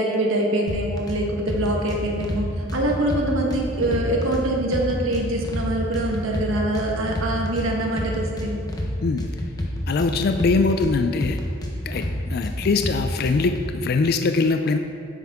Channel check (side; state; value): both; normal; correlation 0.47